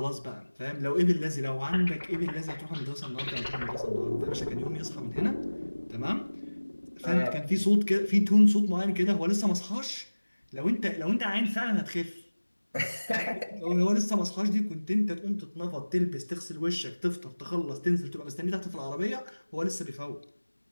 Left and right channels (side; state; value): both; inverted; correlation -1.00